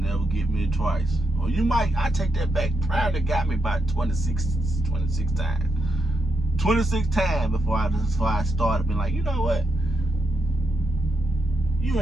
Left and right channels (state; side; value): normal; both; correlation 0.82